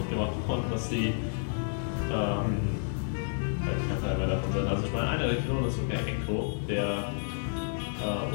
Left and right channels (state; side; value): silent; right; digital silence